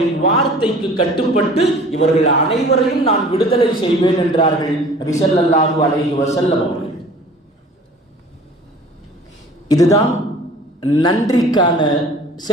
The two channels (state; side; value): normal; both; correlation 0.46